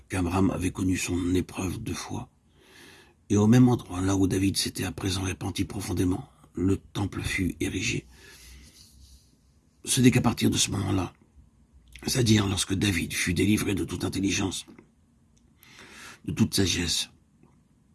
qu'Abraham avait connu son épreuve de foi. Et au même endroit, là où David s'était à présent repenti profondément, le temple fut érigé. Ce n'est qu'à partir de ce moment-là, c'est-à-dire lorsque David fut délivré de toute intelligence, de toute sagesse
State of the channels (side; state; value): both; identical; correlation 1.00